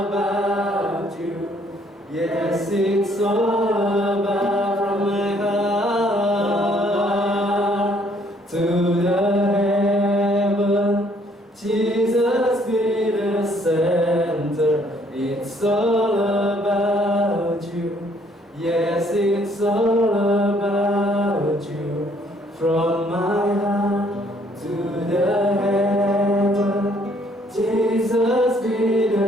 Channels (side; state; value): both; normal; correlation 0.64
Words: you. Yes, it's all about from my heart to the heaven. Jesus be the center. It's all about you. Yes, it's all about you. From my heart to the heaven. Jesus be